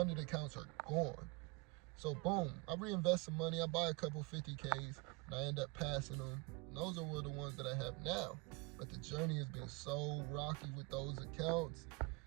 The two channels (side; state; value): left; quieter; 27.6 dB